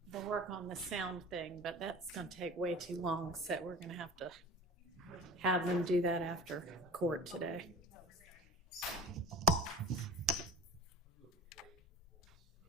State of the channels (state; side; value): normal; both; correlation 0.36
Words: the work on the sound thing, but that's going to take way too long, so we're going to have them do that after court today.